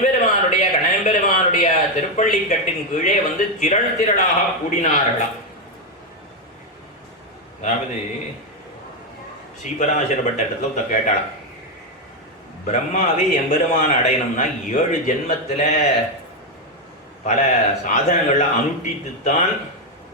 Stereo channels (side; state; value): both; normal; correlation 0.05